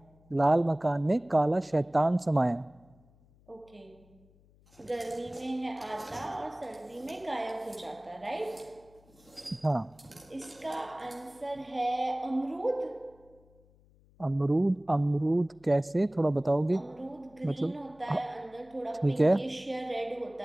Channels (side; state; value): left; noise; hum, 29 dB below the sound